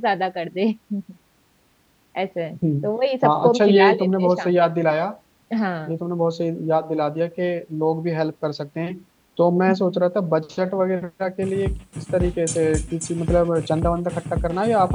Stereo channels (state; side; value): identical; both; correlation 1.00